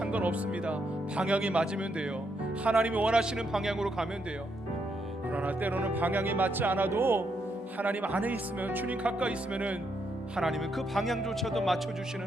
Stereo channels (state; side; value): normal; both; correlation 0.78